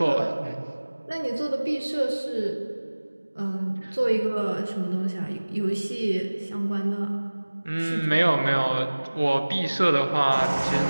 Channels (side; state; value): both; inverted; correlation -1.00